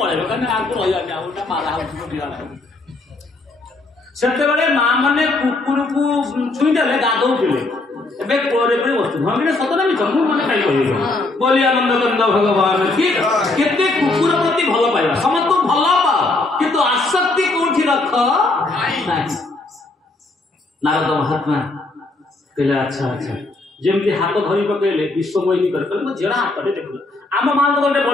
कने आको रह जाने आउटा मारा हो दिया सेते बेले मां माने कुकुर को छुई देले गादौ दिले एबे कोरे पे वस्तु भंगिने सतना भी जम्मू माने खाई कहियो बोली आनंद बंद भगवान की केते कुकुर प्रति भलो पाइबा समस्त भलो पा किंतु आसक्ति कोठी रख नाही नारद महात्मा कहले अच्छा अच्छा जेमती हाथ धरी पकेले विश्वमोहिनी कर मो जेड़ा हाथ रे देखला आम मान गोटे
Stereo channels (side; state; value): right; quieter; 3.1 dB